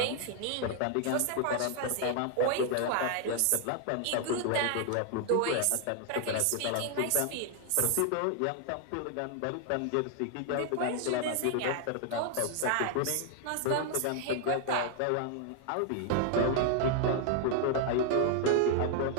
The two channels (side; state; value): both; different; correlation 0.00